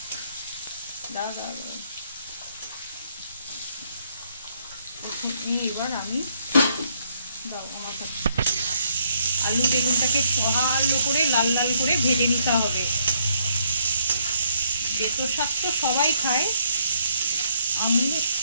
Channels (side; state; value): both; inverted; correlation -0.71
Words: এবার আমি আলু বেগুনটাকে ভালো করে লাল লাল করে ভেজে নিতে হবে। বেতো শাক তো সবাই খায়, আমি